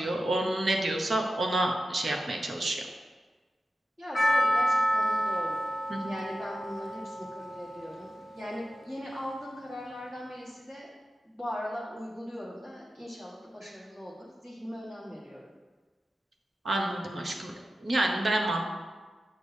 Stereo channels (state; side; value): normal; both; correlation 0.92